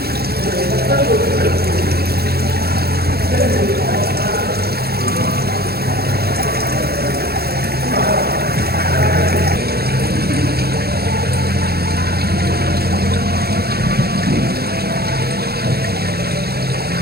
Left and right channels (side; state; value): left; late; 0.46 ms